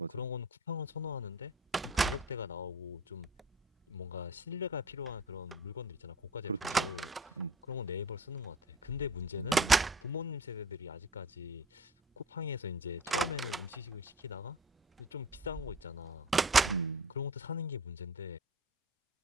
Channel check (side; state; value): both; normal; correlation 0.43